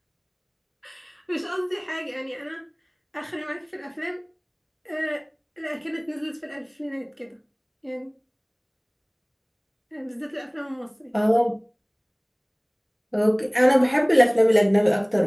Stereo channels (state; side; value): identical; both; correlation 1.00